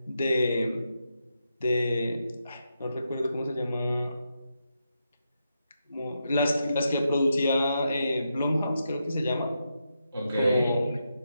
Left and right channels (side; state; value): both; inverted; correlation -0.85